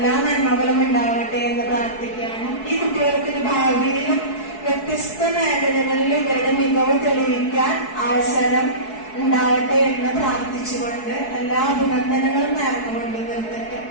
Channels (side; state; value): right; late; 4.7 ms